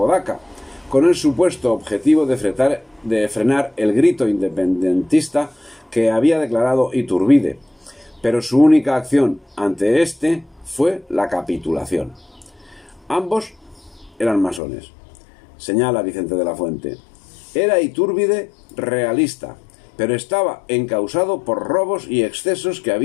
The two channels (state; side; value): drops out; right; at 14.6 s